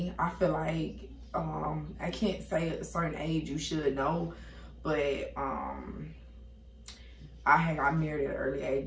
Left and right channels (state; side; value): identical; both; correlation 1.00